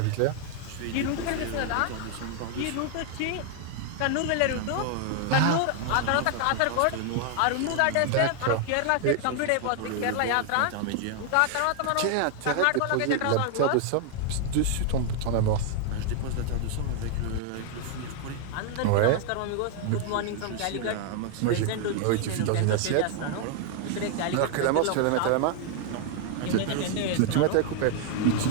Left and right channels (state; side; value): different; both; correlation 0.00